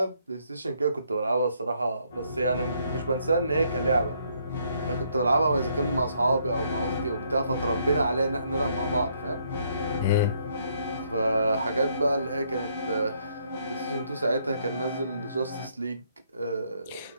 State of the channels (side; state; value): both; inverted; correlation -0.70